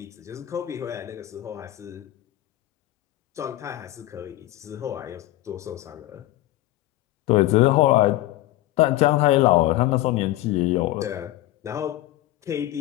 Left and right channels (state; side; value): quieter; right; 15.7 dB